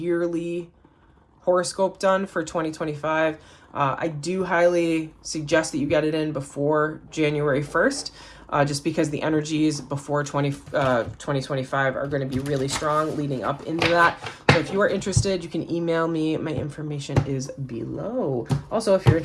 horoscope done for 2025. I do highly suggest that you get it in before January 1st, just because the energies before 2025 are going to be really strong leading up into that. So if you are interested, you can email me. My information is below. Also, if you're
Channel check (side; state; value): both; identical; correlation 1.00